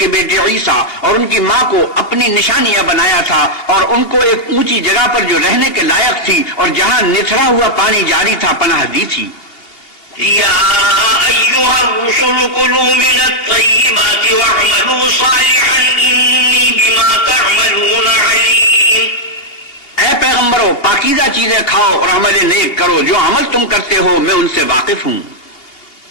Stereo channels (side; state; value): right; late; 2.9 ms